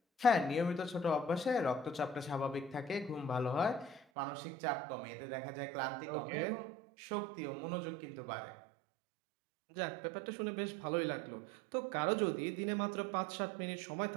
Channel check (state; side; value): drops out; left; at 4.0 s